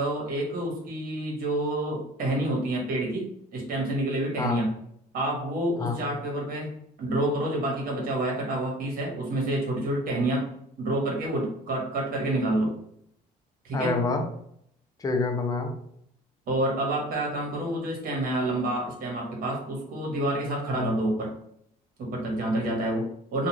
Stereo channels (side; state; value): both; normal; correlation 0.43